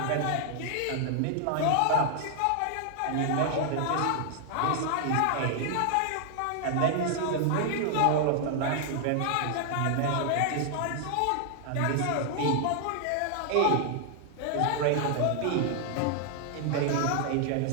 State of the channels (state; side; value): different; both; correlation 0.00